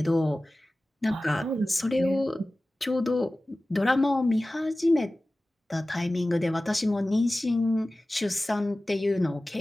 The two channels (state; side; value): normal; both; correlation 0.97